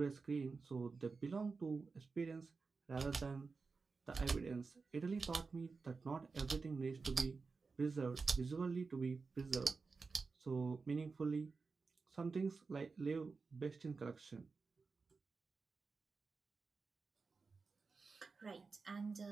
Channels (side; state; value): left; quieter; 4.5 dB